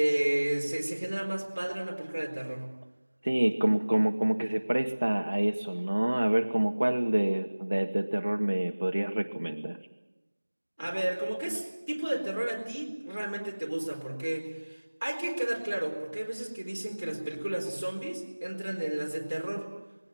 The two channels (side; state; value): both; inverted; correlation -1.00